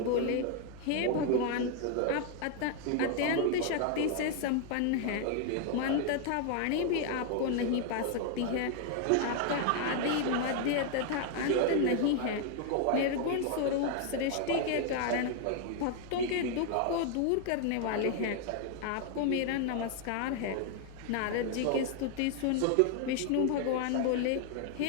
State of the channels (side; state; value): both; different; correlation 0.00